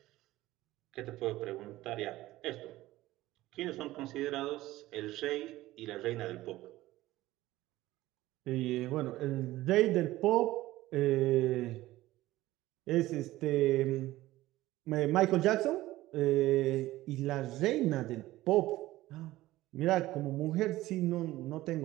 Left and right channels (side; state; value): left; quieter; 16.7 dB